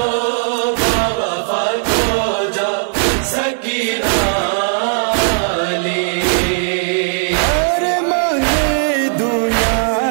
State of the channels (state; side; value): silent; left; digital silence